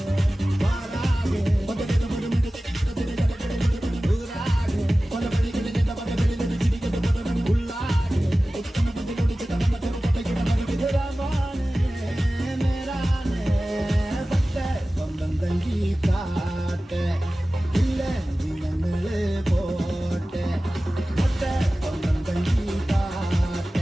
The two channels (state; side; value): normal; both; correlation 0.96